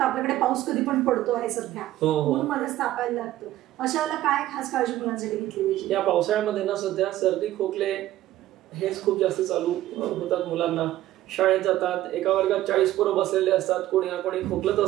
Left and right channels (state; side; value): quieter; left; 14.5 dB